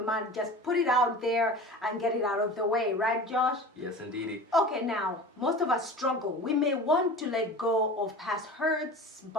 might just put it out there and get it out of the way. Right, Josh? Yes, indeedy. Okay, now, most of us struggle. We may want to let go of past hurts,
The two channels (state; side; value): normal; both; correlation 0.36